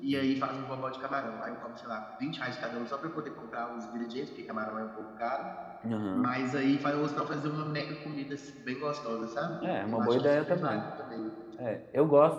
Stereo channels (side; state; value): both; identical; correlation 1.00